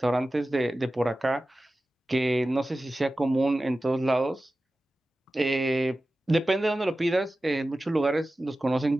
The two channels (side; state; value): both; normal; correlation 0.95